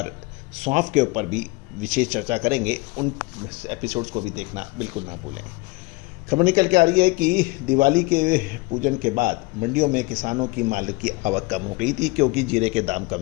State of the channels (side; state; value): right; quieter; 24.4 dB